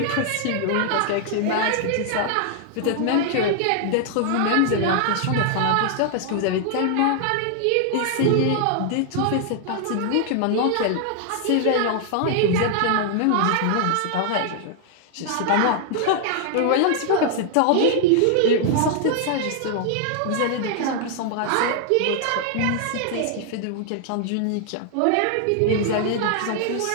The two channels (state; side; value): different; both; correlation 0.00